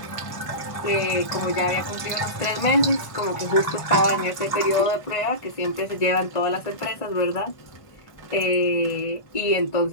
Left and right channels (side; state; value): right; late; 1.5 ms